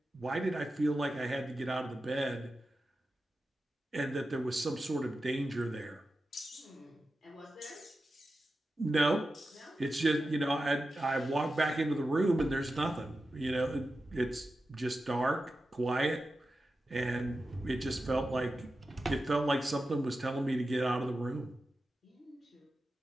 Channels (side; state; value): both; normal; correlation 0.92